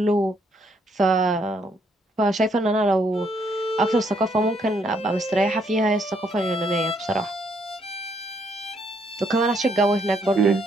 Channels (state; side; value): normal; both; correlation 0.71